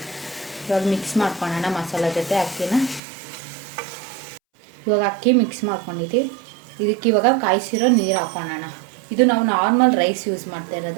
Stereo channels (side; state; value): left; drops out; at 3.0 s